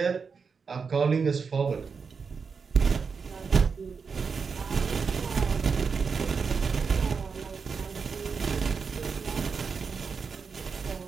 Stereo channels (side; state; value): left; quieter; 5.4 dB